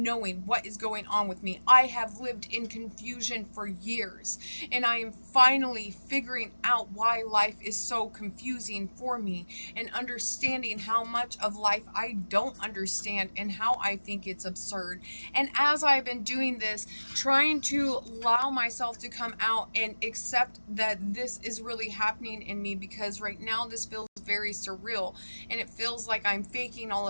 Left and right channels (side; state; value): both; inverted; correlation -1.00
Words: knowing what is going on with me. I have lived in confusion for years, and I am finally figuring out why life is so confusing for me and understanding how much of life I don't understand and how I think it's absurd. And as I've been doing this, trying to allow myself to come out and accept that this is really happening in me, because right now this feels very surreal and it feels like I'm faking all